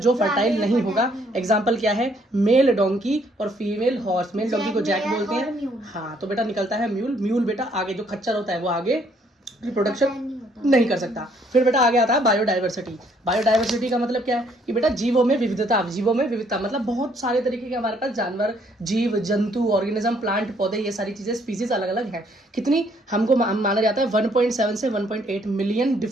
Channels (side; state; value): both; normal; correlation 0.66